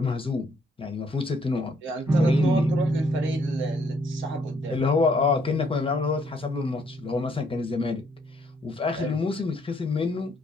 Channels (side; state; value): both; normal; correlation 0.68